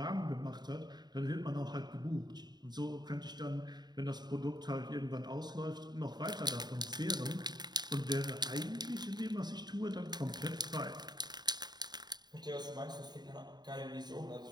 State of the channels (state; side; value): late; left; 0.20 ms